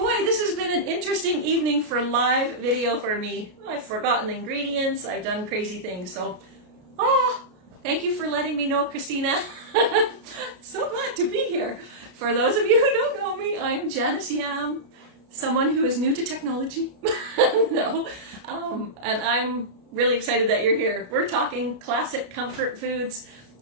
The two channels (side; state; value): left; late; 33 ms